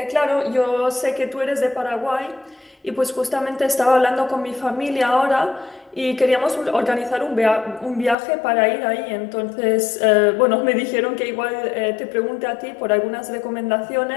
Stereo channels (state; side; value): drops out; right; at 8.2 s